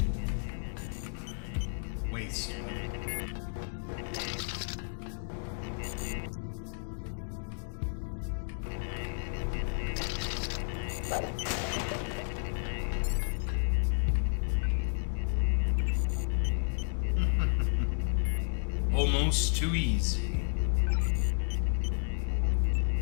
Waste. Almost too easy.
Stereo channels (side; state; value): right; silent; digital silence